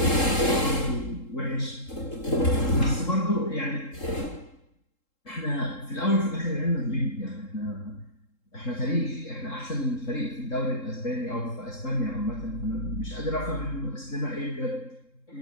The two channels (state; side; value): late; right; 3.7 ms